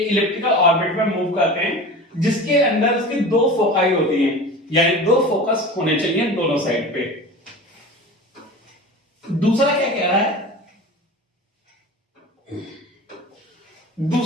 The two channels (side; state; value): both; normal; correlation 0.34